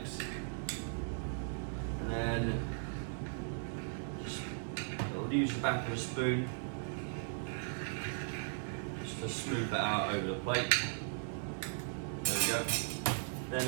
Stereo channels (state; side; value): silent; left; 53 dB below the other